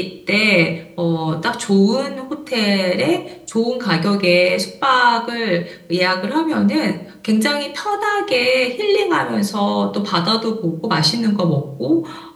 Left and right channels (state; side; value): identical; both; correlation 1.00